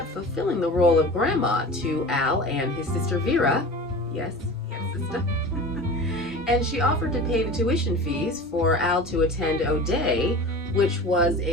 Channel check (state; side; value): normal; both; correlation 0.35